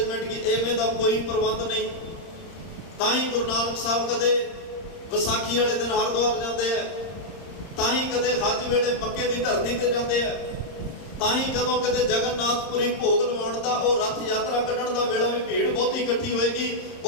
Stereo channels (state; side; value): late; right; 31 ms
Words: ਕੀ, ਐਵੇਂ ਦਾ ਕੋਈ ਪ੍ਰਬੰਧ ਨਹੀਂ। ਤਾਂ ਹੀ ਗੁਰੂ ਨਾਨਕ ਸਾਹਿਬ ਕਦੇ ਵਿਸਾਖੀ ਵਾਲੇ ਦਿਨ ਹਰਿਦੁਆਰ ਜਾਂਦੇ ਆ, ਤਾਂ ਹੀ ਕਦੇ ਹੱਜ ਵੇਲੇ ਮੱਕੇ ਦੀ ਧਰਤੀ ਤੇ ਜਾਂਦੇ ਆ, ਤਾਂ ਹੀ ਜਦੋਂ ਕਿਤੇ ਜਗਨਨਾਥਪੁਰੀ ਭੋਗ ਲਵਾਉਣ ਦਾ, ਉਹ ਰੱਥ ਯਾਤਰਾ ਕੱਢਣ ਦਾ ਵੇਲਾ ਵੀ ਭੀੜ ਬਹੁਤੀ ਇਕੱਠੀ ਹੋਏਗੀ,